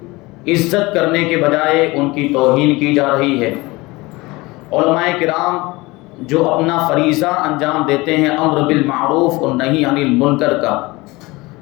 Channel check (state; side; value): quieter; right; 22.3 dB